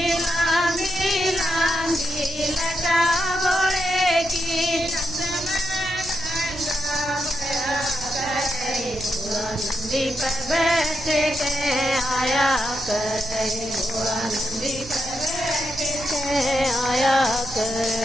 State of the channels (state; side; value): noise; right; rumble, 14 dB below the sound